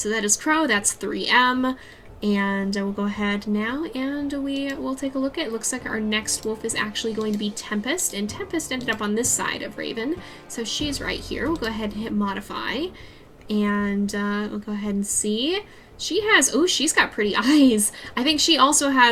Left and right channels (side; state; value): both; identical; correlation 1.00